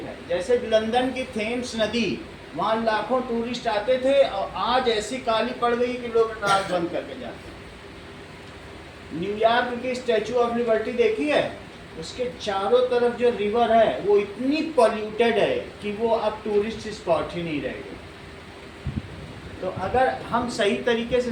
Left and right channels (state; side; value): identical; both; correlation 1.00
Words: है। जैसे लंदन की थेम्स नदी, वहाँ लाखों टूरिस्ट आते थे और आज ऐसी काली पड़ गई कि लोग नाक बंद करके जाते हैं। न्यूयॉर्क की स्टैचू ऑफ लिबर्टी देखी है? उसके चारों तरफ जो रिवर है वो इतनी पॉल्यूटेड है कि वो अब टूरिस्ट स्पॉट ही नहीं रहेगी। तो अगर हम सही तरीके से